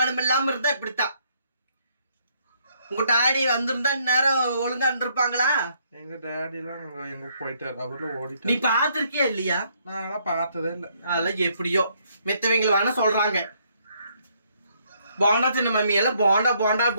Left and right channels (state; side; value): inverted; both; correlation -0.70